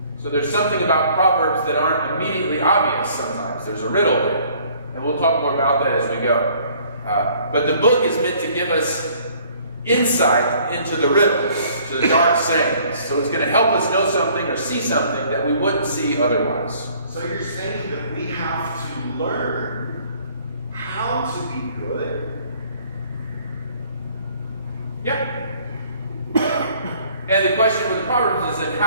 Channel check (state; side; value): inverted; both; correlation -0.58